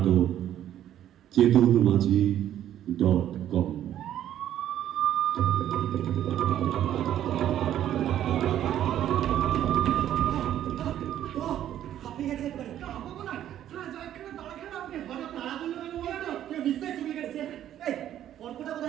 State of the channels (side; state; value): left; quieter; 11.4 dB